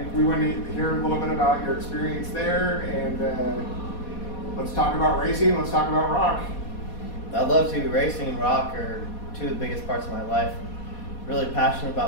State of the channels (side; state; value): right; late; 4.2 ms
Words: we want to hear a little bit about your experience there, and let's talk about racing, let's talk about rock. I'd love to. Racing and rock are two of the biggest parts of my life. Really passionate